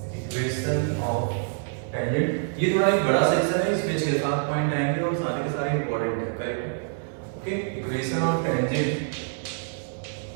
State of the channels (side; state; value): left; silent; digital silence